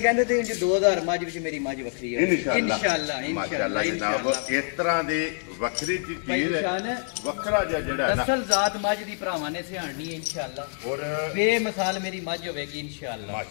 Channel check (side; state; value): right; silent; 58 dB below the other